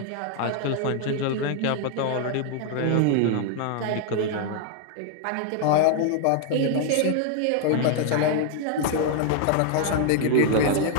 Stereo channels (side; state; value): both; different; correlation 0.00